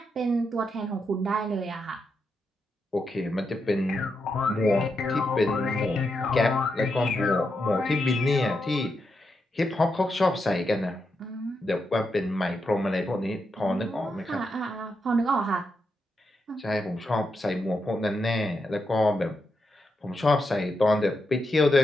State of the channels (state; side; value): normal; both; correlation 0.84